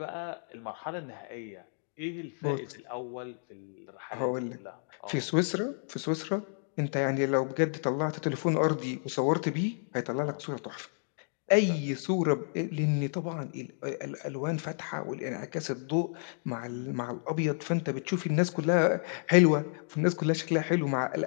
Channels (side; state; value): right; silent; digital silence